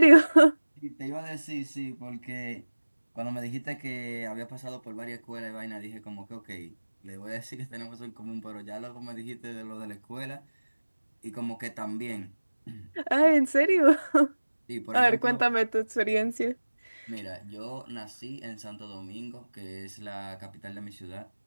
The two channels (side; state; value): both; inverted; correlation -1.00